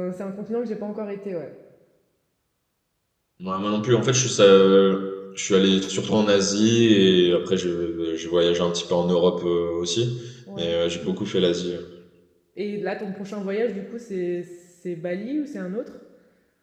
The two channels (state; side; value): identical; both; correlation 1.00